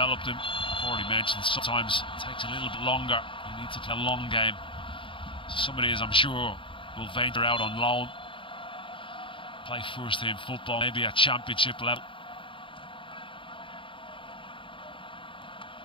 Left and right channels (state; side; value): late; right; 0.25 ms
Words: them. I've already mentioned sometimes it takes a little bit longer. You need to play a long game. So somebody, as I'm sure, will venture out on loan, play first team football, maybe at championship level.